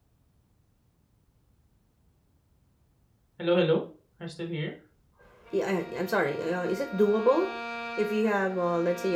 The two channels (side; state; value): both; identical; correlation 1.00